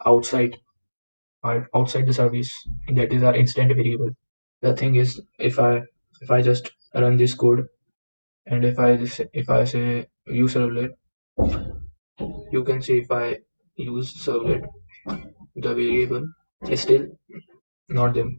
outside outside the service. That is our instant variable. The thing is, if I just run this code and if I say use servlet, you can see if I use servlet, the variable is still not there.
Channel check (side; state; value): both; inverted; correlation -1.00